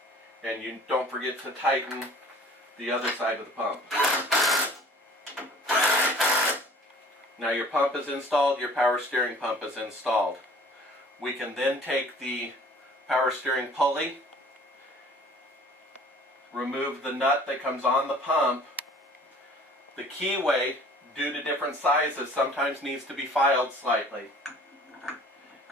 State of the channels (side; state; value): both; normal; correlation 0.50